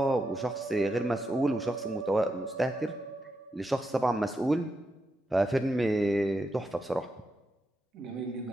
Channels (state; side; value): normal; both; correlation 0.85